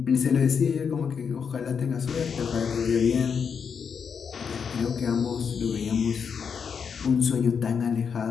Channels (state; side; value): quieter; right; 6.6 dB